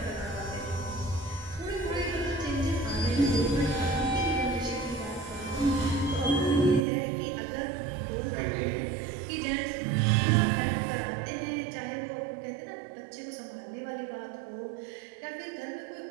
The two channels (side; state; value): left; drops out; at 6.9 s